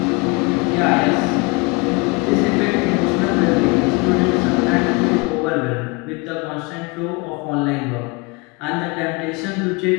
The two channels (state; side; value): quieter; right; 27.9 dB